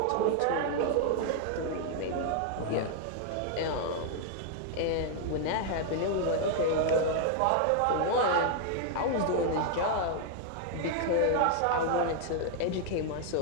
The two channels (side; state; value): both; different; correlation -0.01